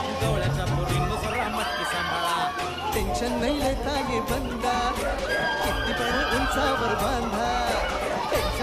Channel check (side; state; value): both; identical; correlation 1.00